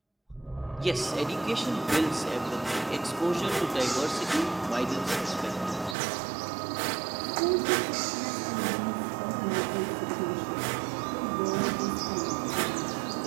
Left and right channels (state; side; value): drops out; left; at 6.0 s